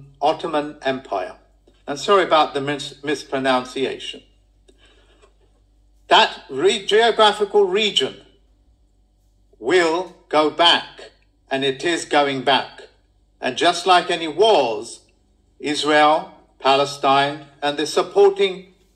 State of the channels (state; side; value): identical; both; correlation 1.00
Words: Empire. And sorry about the mispronunciation. That geographical region will go back, and it is going back. And just like any wars, Israel, Palestine, and the supporting